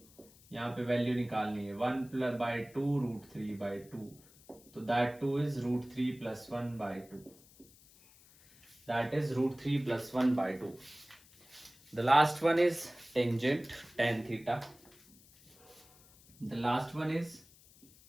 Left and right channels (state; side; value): noise; left; hiss, 25 dB below the sound